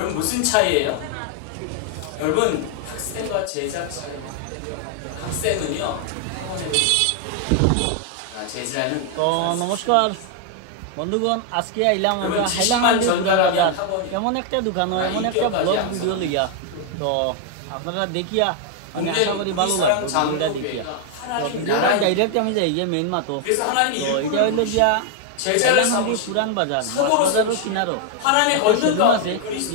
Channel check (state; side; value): different; both; correlation 0.00